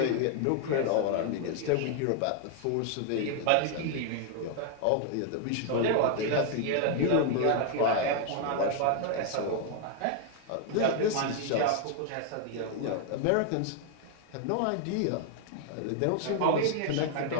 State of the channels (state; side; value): different; both; correlation 0.00